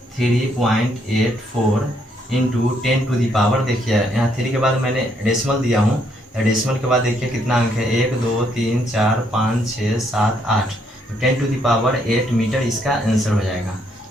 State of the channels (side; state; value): both; normal; correlation 0.72